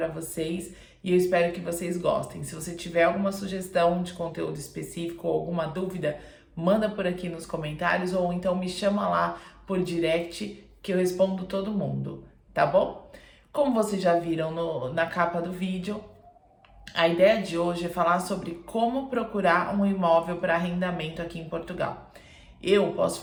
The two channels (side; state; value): both; identical; correlation 1.00